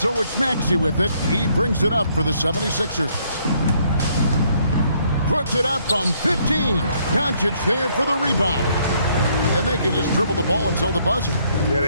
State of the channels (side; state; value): both; inverted; correlation -0.68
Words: it's Maxey with it. He brings it up for the 76ers. Puts it up from 15. Doncic there for the rebound. And they can just dribble the ball until the buzzer. Yeah,